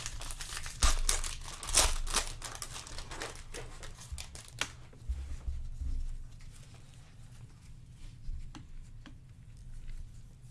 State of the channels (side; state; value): both; identical; correlation 1.00